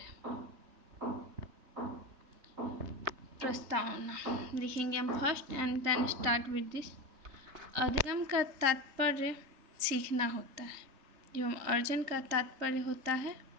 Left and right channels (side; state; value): left; late; 3.4 ms